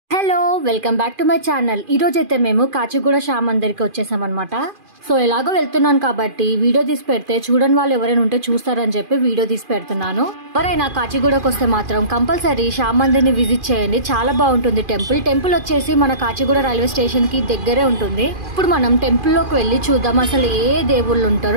Hello welcome back to my channel. ఈ రోజు అయితే మేము కాచిగూడ శ్యామ్ మందిర్కి వచ్చేసాం అనమాట. సో ఎలాగో వెళ్తున్నాను కాబట్టి వీడియో తీసి పెడితే చూడని వాళ్ళు ఎవరైనా ఉంటే చూస్తారని చెప్పి వీడియో తీసి పెడుతున్నాను. ఎవరైనా కాచిగూడకు వస్తే మాత్రం కంపల్సరీ శ్యామ్ మందిర్ని విజిట్ చేయండి, చాలా బాగుంటుంది. టెంపుల్ వచ్చేసి మన కాచిగూడ రైల్వే స్టేషన్ కి దగ్గరే ఉంటుంది. ఇప్పుడు మనం టెంపుల్ లోకి వెళ్ళి చూద్దాం అసలు ఏ దేవుళ్ళు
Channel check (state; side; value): late; left; 2.4 ms